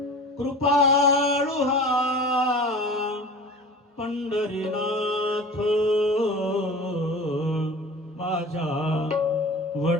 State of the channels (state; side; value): normal; both; correlation 0.37